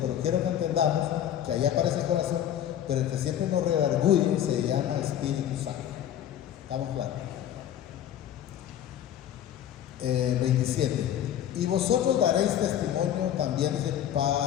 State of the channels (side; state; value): right; quieter; 10.7 dB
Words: quiero que entendamos que ahí aparece el corazón, pero el que siempre nos redarguye se llama Espíritu Santo. ¿Estamos claros? 27. Y vosotros daréis testimonio también, dice,